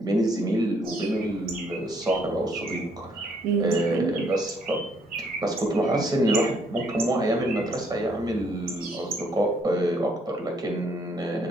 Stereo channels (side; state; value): both; normal; correlation 0.68